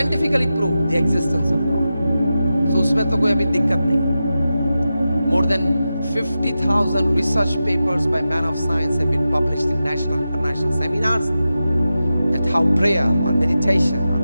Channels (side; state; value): both; inverted; correlation -0.92